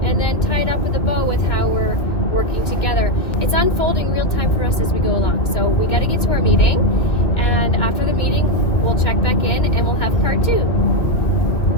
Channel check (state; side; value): late; right; 2.0 ms